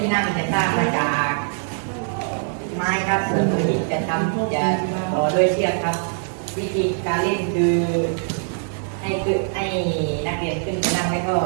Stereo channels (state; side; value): silent; left; 64 dB below the other